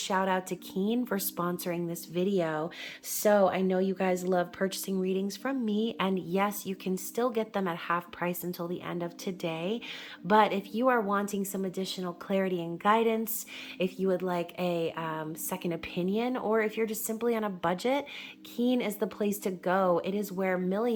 out to Keen for sponsoring this video. So, I know you guys love purchasing readings from me, and yes, you can still get them at half price until the end of today. But if you are wanting some additional clarity and guidance, if you would like a second opinion, or if you're just simply on a budget, Keen is the place to go. It is where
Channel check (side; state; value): both; identical; correlation 1.00